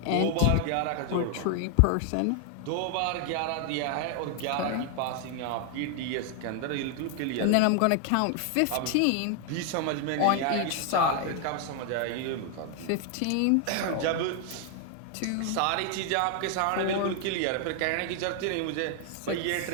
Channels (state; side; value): different; both; correlation 0.00